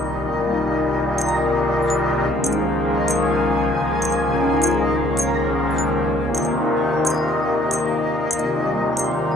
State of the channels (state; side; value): normal; both; correlation 0.62